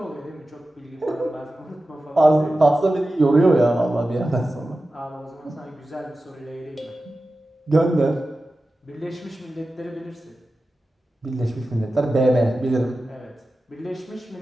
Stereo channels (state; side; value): normal; both; correlation 0.94